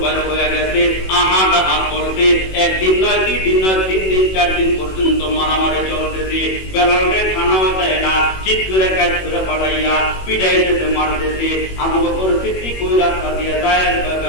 বের হয়ে গেছে, আহাত করতে, একদিন নয়, 2 দিন নয়, 3 দিন 4 দিন পর্যন্ত মারামারি চলতেছে। বেলালে খানাও দেয় না, চিৎ করে কাজ করে পাঠাইয়া পিটাইতেছে, মারতেছে। আবু বকর সিদ্দিক ওই রাস্তা দিয়ে যায়,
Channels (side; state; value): right; late; 21 ms